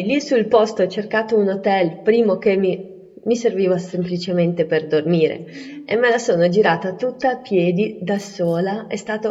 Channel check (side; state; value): both; identical; correlation 1.00